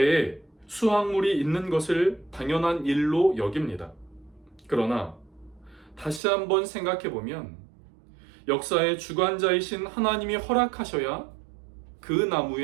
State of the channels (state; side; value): drops out; left; at 6.2 s